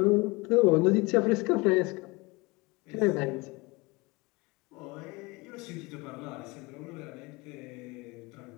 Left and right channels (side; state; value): right; quieter; 25.0 dB